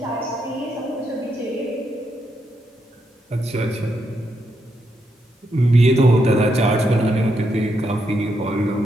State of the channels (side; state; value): both; normal; correlation 0.80